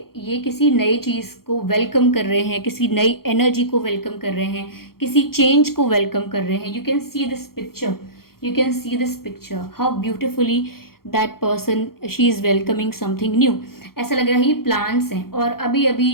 ये किसी नई चीज़ को वेलकम कर रहे हैं, किसी नई एनर्जी को वेलकम कर रहे हैं, किसी चेंज को वेलकम कर रहे हैं। You can see this picture how beautifully that person, she is welcoming something new. ऐसा लग रहा है ये प्लांट्स हैं और अभी अभी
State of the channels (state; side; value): late; right; 0.93 ms